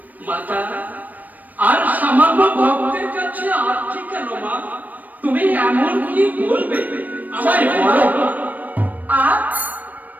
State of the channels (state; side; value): late; left; 0.082 ms